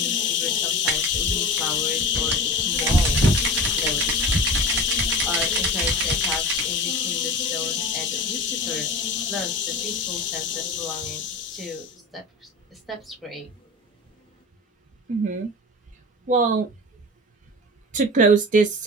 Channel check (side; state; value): both; normal; correlation 0.32